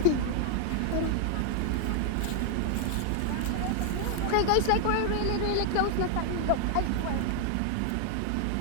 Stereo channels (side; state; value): both; different; correlation 0.00